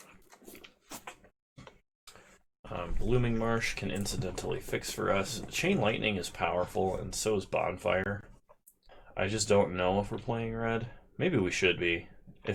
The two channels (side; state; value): both; identical; correlation 1.00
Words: Blooming Marsh can incidentally fix for us. Chain Lightning is powerful, and so is Bonfire. I just don't know if we're playing red. Maybe we should be.